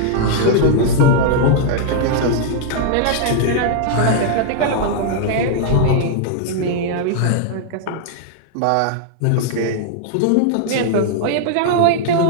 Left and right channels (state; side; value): different; both; correlation -0.01